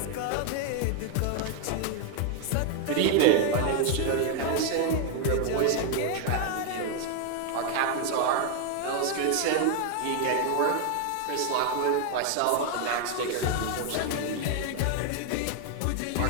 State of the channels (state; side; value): different; both; correlation 0.00